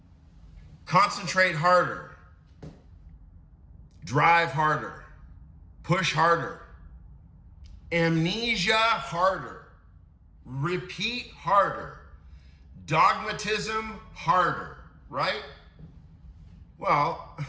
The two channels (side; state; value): both; identical; correlation 1.00